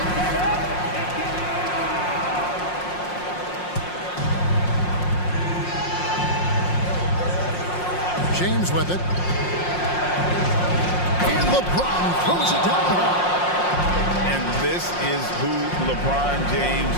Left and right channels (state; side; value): late; right; 5.6 ms